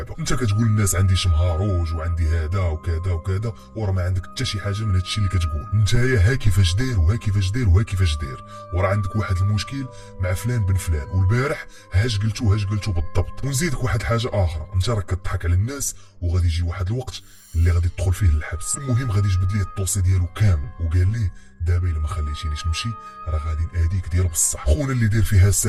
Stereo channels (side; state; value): both; identical; correlation 1.00